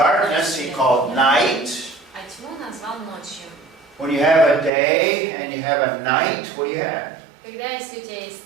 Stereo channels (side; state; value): left; drops out; at 4.7 s